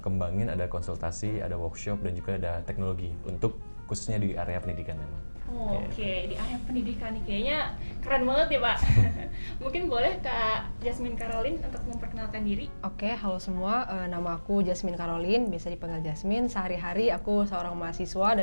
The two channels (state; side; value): inverted; both; correlation -1.00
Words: kembangin ada konsultasi, ada workshop, dan juga ada teknologi untuk khususnya di area pendidikan memang. Oke, di area pendidikan nih kayaknya keren banget ya Pak. Mungkin boleh Kak Jasmine Caroline untuk memperkenalkan diri. Oke, halo semua, nama aku Jasmine Caroline, biasa dipanggil Jasmine. Sehari-hari aku seorang mahasiswa